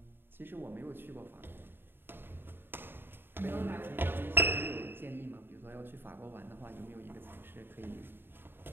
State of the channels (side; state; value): left; late; 0.10 ms